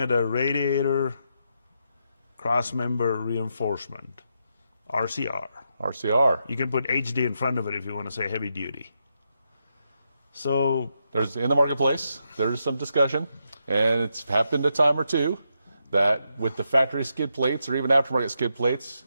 a Radiator Crossmember Reinforcement, RCR. RCR. You can put HD in front of it if you want to say heavy duty. So There's in the marketplace, there's some discussion, and it's happened a time or two that with the factory skid plates or even aftermarket skid plates,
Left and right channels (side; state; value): both; inverted; correlation -0.82